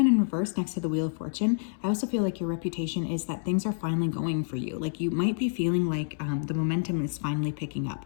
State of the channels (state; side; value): silent; right; 59 dB below the other